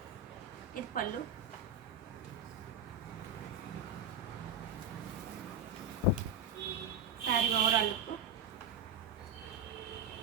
ఇది పళ్ళు. శారీ ఓవరాల్ లుక్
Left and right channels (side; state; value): left; quieter; 4.0 dB